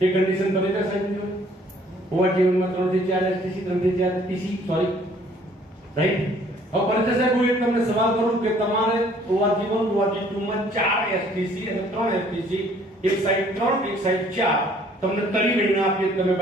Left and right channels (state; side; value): normal; both; correlation 0.59